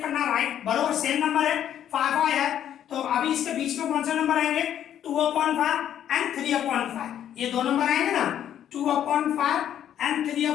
करना, राइट, बराबर सेम नंबर है 5 5 है, तो अभी इसके बीच में कौन से नंबर आएंगे 2/5 एंड 3/5। ये दो नंबर आएंगे ना 2/5 एंड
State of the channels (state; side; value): quieter; right; 10.4 dB